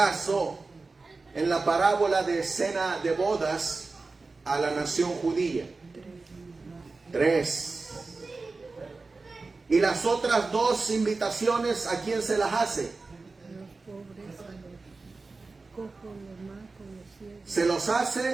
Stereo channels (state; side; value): quieter; left; 3.8 dB